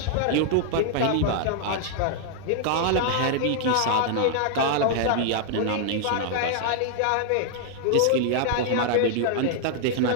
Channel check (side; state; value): both; different; correlation 0.00